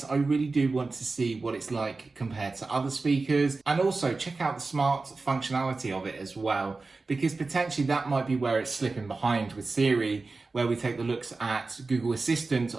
I really do want to see what it's like compared to other speakers, and also check out the smart functionality of it as well, because potentially that might be where it's slipping behind with Siri, where we take the looks at Google Assistant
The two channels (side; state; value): left; quieter; 3.7 dB